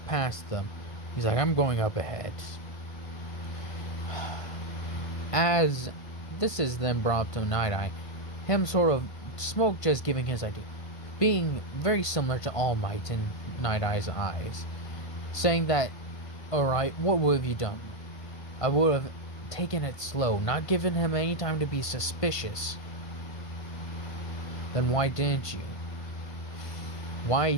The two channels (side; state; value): right; late; 1.5 ms